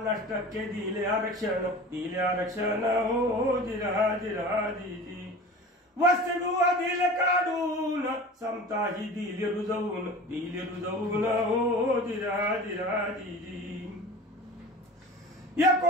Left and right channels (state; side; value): normal; both; correlation 0.37